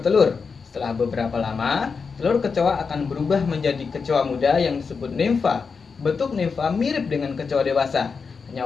Setelah beberapa lama, telur kecoa akan berubah menjadi kecoa muda yang disebut nimfa. Bentuk nimfa mirip dengan kecoa dewasa,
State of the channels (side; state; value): right; quieter; 5.3 dB